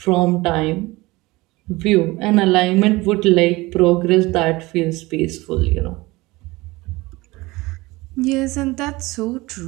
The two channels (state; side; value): quieter; left; 21.3 dB